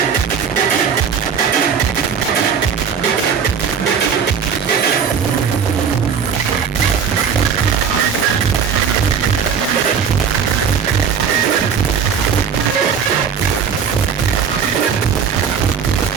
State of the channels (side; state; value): left; quieter; 7.0 dB